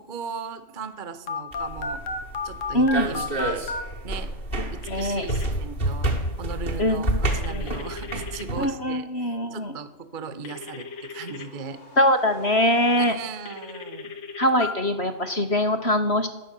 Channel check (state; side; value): late; right; 3.1 ms